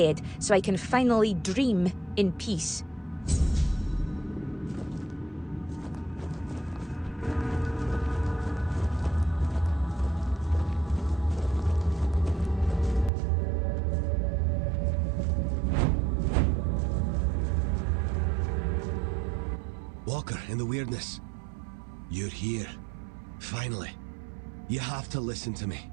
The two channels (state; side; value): drops out; left; at 13.1 s